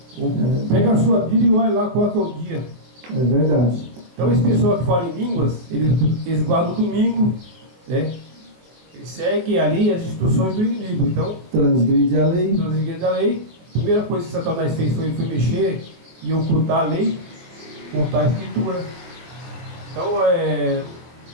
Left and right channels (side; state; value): left; late; 23 ms